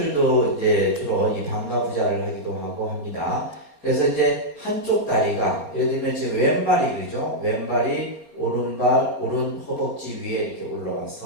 이제 주로 이 반가부좌를 하기도 하고 합니다. 그래서 이제 한쪽 다리가 예를 들면 지금 왼발이 그죠? 왼발이 오른발 오른 허벅지 위에 이렇게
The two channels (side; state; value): left; late; 4.3 ms